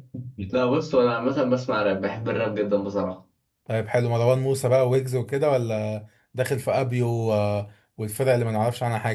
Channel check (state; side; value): identical; both; correlation 1.00